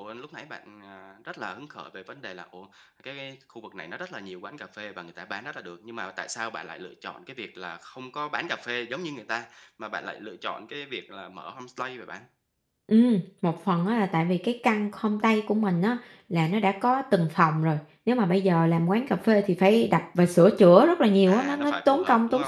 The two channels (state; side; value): identical; both; correlation 1.00